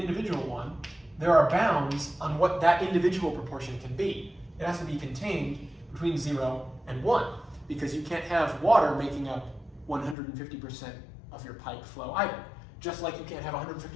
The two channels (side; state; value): right; drops out; at 10.2 s